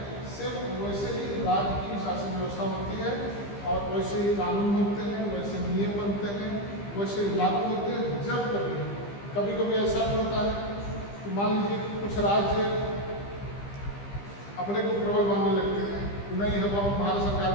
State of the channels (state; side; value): late; right; 15 ms